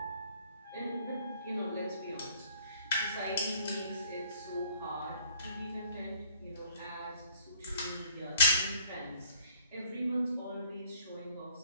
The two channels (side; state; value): both; inverted; correlation -0.58